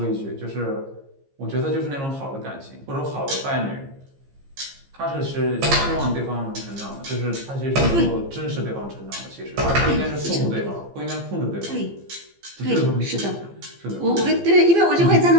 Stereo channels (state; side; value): late; left; 15 ms